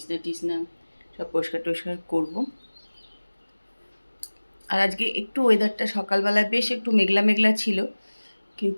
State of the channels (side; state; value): both; inverted; correlation -1.00